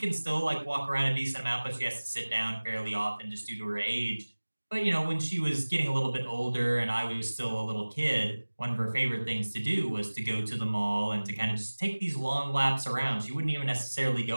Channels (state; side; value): inverted; both; correlation -1.00